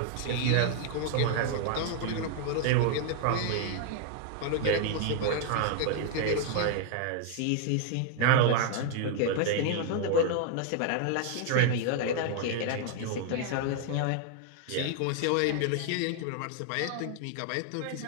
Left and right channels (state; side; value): different; both; correlation 0.00